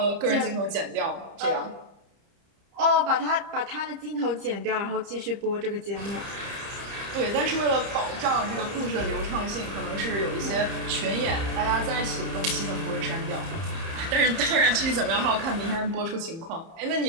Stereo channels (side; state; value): left; late; 30 ms